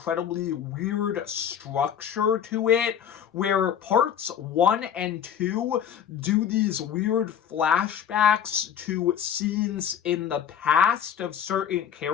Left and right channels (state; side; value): quieter; right; 8.8 dB